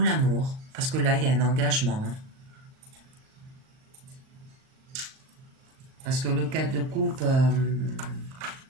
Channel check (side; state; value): left; late; 38 ms